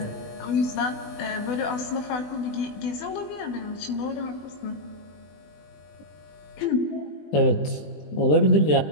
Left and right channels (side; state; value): right; late; 20 ms